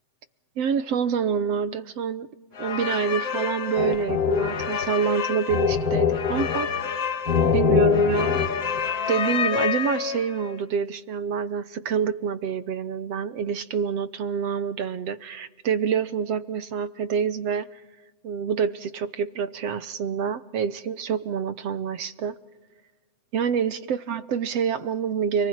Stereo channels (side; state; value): left; late; 7.8 ms